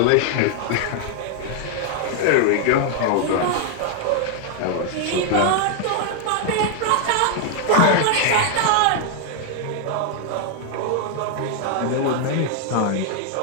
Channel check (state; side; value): different; both; correlation 0.00